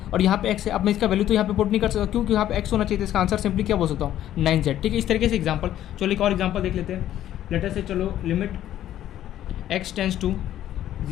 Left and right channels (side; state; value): right; quieter; 12.1 dB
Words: और यहाँ पे x है, अब मैं इसका वैल्यू तो यहाँ पे पुट नहीं कर सकता, क्योंकि यहाँ पे x होना चाहिए, तो इसका आंसर सिंपली क्या बोल सकता हूँ, 9z। ठीक है, इस तरीके से एग्जांपल। चलो एक और एग्जांपल देख लेते हैं। लेटेस्ट से चलो limit x tends to